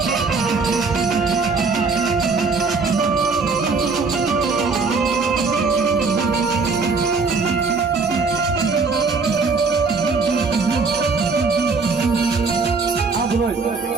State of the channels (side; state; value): left; quieter; 4.5 dB